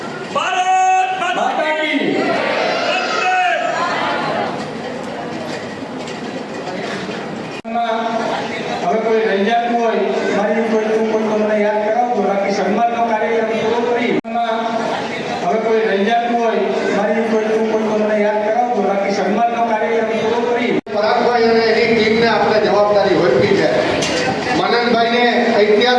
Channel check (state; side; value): identical; both; correlation 1.00